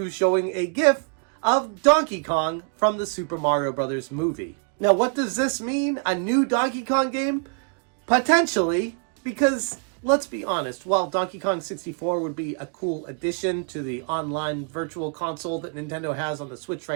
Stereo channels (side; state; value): left; quieter; 38.4 dB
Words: showing a GIF of Donkey Kong from the Super Mario Bros. Movie. Now, what does this mean? A new Donkey Kong game? Potentially, because let's be honest, while Donkey Kong 64 would be a cool addition to the online virtual console that Nintendo has on the Switch